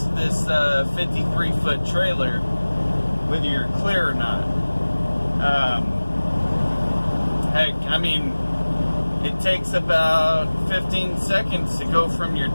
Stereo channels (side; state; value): both; inverted; correlation -1.00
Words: this 53-foot trailer whether you're clear or not. Heck, I mean, it takes about 15 seconds to go from your